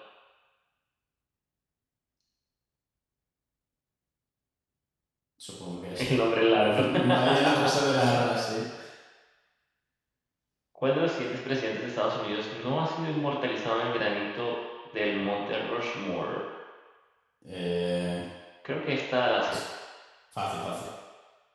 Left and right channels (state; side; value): identical; both; correlation 1.00